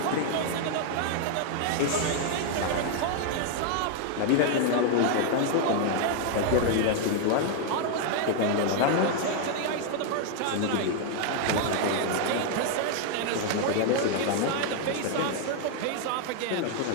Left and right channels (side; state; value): both; different; correlation 0.00